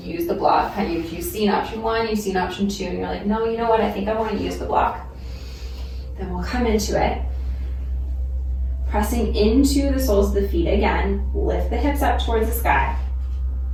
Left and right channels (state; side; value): identical; both; correlation 1.00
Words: use the block, if you've seen option 1, you've seen option 2, and you're like, no, you know what, I think I want to use the block, then we'll come into it. Pressing into the soles of the feet again, lift the hips up towards the sky.